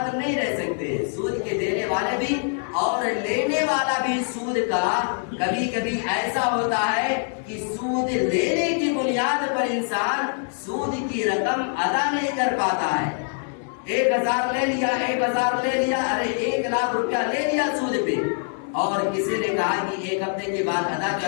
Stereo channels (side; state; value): right; silent; 62 dB below the other